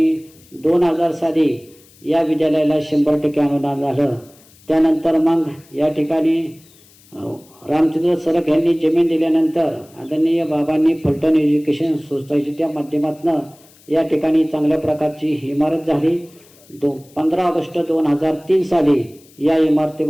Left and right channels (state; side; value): noise; left; hiss, 27 dB below the sound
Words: 2000 साली या विद्यालयाला 100% अनुदान झालं. त्यानंतर मग या ठिकाणी रामचंद्र सरक यांनी जमीन दिल्यानंतर आदरणीय बाबांनी फलटण एज्युकेशन सोसायटीच्या माध्यमातून या ठिकाणी चांगल्या प्रकारची इमारत झाली. 15 ऑगस्ट 2003 साली या